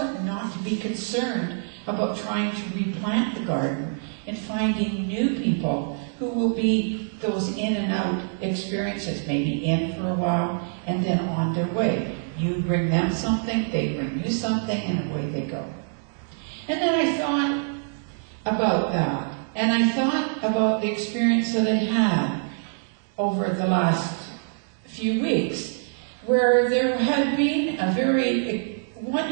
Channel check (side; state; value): left; silent; digital silence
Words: not to be concerned about trying to replant the garden and finding new people who will be those in and out experiences, maybe in for a while and then on their way. You bring them something, they bring you something, and away they go. And then I thought about that, and I thought about the experience that I had over the last few weeks, where there had been a very